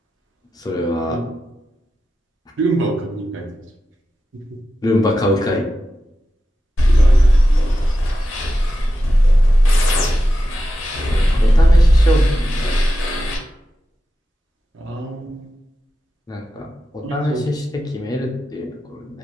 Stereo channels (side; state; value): both; normal; correlation 0.91